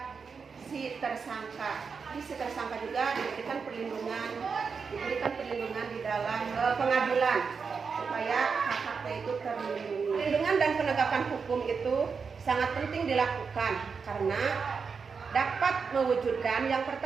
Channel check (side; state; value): left; quieter; 5.5 dB